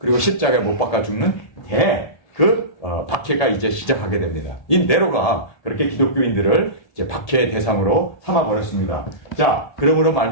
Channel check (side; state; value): right; late; 1.7 ms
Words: 십자가에 못 박아 죽는 박해가 이제 시작하게 됩니다. 이 네로가 그렇게 기독교인들을 이제 박해의 대상으로 삼아버렸습니다. 자, 그러므로